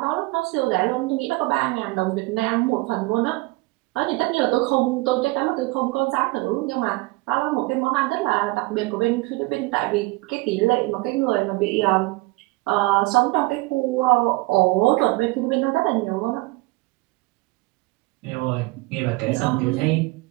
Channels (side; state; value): left; quieter; 23.1 dB